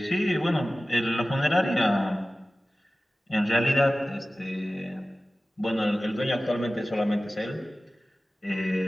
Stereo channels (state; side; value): normal; both; correlation 0.96